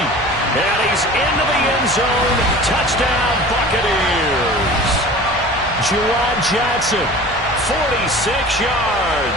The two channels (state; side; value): normal; both; correlation 0.40